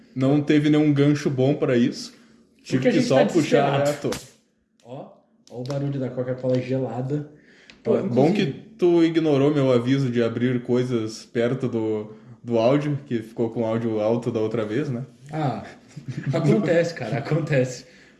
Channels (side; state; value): both; identical; correlation 1.00